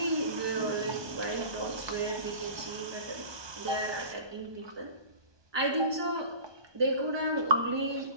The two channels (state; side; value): late; left; 1.2 ms